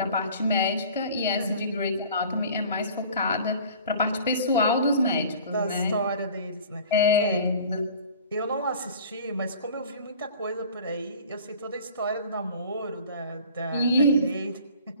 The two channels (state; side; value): inverted; both; correlation -0.45